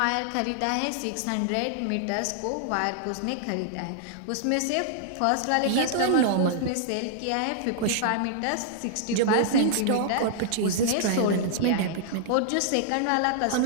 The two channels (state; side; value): different; both; correlation -0.01